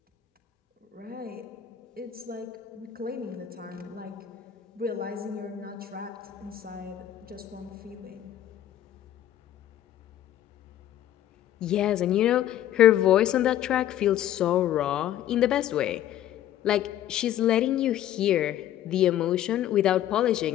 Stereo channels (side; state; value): right; quieter; 11.9 dB